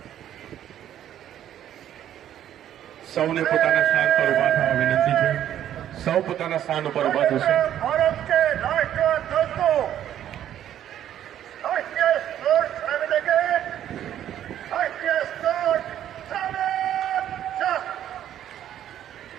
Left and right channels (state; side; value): quieter; left; 11.0 dB